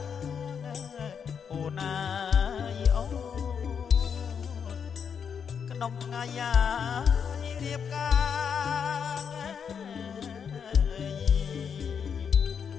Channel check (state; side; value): quieter; right; 7.1 dB